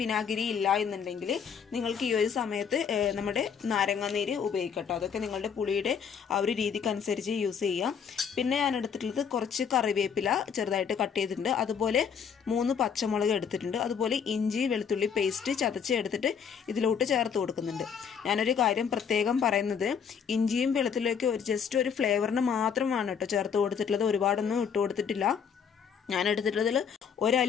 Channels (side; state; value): right; quieter; 7.0 dB